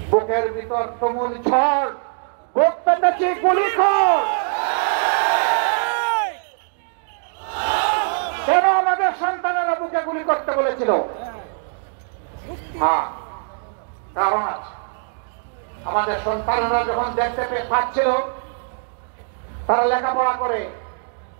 বুকের ভিতর তুমুল ঝড়, বুক পেতেছি গুলি কর। কেন আমাদের সন্তানেরা বুকে গুলি করতে বলেছিল? হ্যাঁ, কারণ আছে। আমাদের সন্তানেরা যখন দেখতে পাচ্ছিল তারা লেখাপড়া করে,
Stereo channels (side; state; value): left; silent; digital silence